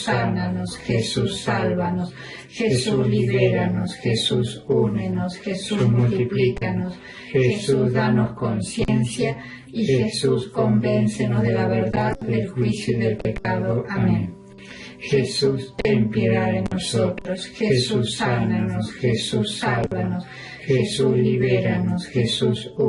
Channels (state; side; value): identical; both; correlation 1.00